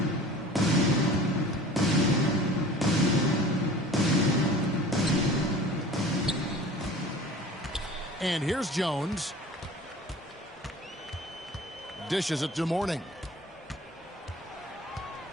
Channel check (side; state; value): both; normal; correlation 0.43